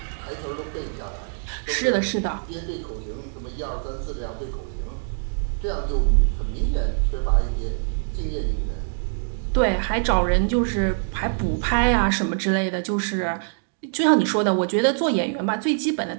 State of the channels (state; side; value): silent; left; digital silence